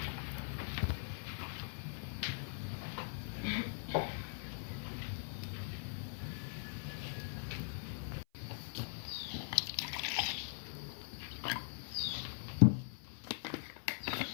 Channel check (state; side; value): silent; right; 50 dB below the other